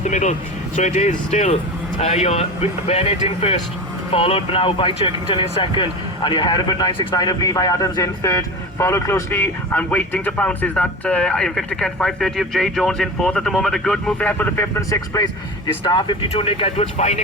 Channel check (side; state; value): both; normal; correlation 0.29